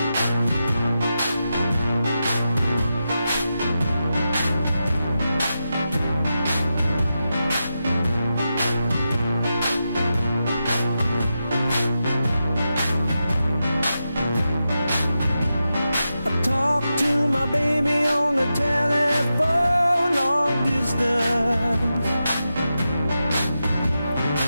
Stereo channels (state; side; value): inverted; both; correlation -0.89